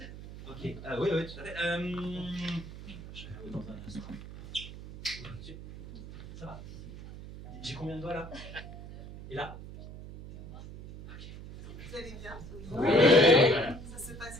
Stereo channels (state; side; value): noise; right; hum, 13 dB below the sound